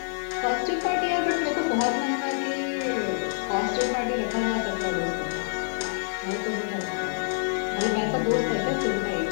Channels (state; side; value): silent; right; digital silence